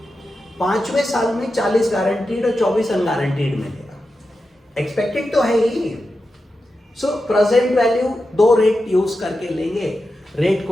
5वें साल में 40 गारंटीड और 24 अनगारंटीड मिलेगा, एक्सपेक्टेड तो है ही। So present value 2 rate use करके लेंगे, रेट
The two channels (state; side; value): normal; both; correlation 0.90